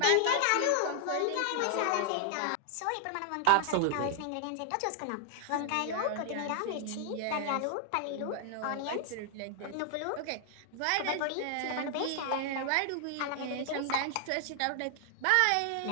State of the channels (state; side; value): different; both; correlation 0.00